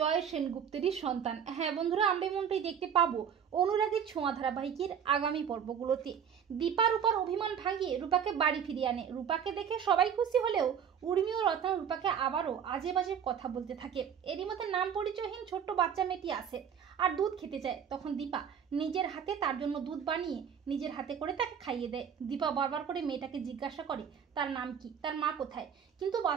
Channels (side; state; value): left; quieter; 8.0 dB